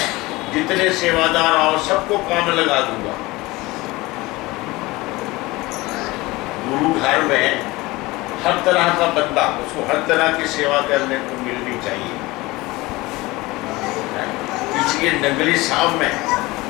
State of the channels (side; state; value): right; quieter; 21.1 dB